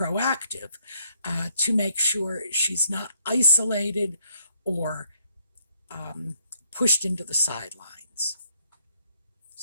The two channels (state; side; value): inverted; both; correlation -0.69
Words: to make sure she's not isolated or pushed into the sidelines.